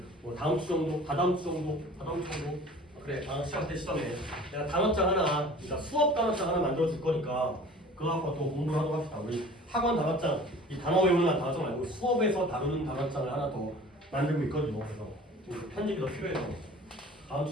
뭐 다음 주 정도, 다다음 주 정도 그래 다음 시간 때 시점에 내가 단어장 하나, 그러니까 수업 단어장 하나 만들어 줄 거니까 그거 갖고 또 공부를 하도록 합시다. 우리 학원 단어장 이 단어 외우는 단어장 말고 수업에서 다루는 단어장을 하나 더 만들고 있거든요. 그래서 편집이 더 필요해서 다음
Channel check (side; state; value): both; normal; correlation 0.45